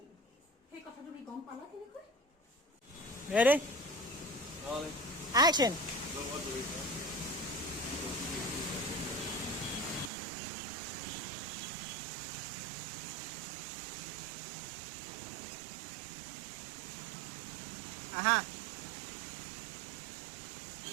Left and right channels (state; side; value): drops out; left; at 10.1 s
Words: সেই কথা তুমি গম পালা কেনেকৈ? Ready? Action. Aha.